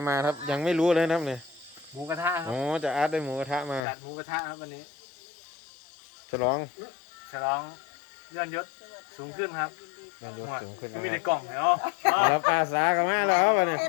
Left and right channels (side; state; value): right; drops out; at 3.9 s